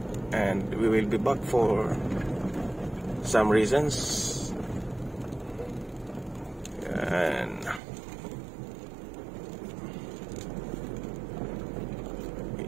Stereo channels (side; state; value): left; drops out; at 7.8 s